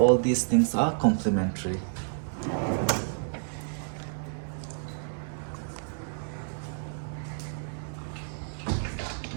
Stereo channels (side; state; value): left; silent; digital silence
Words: these things are complimentary.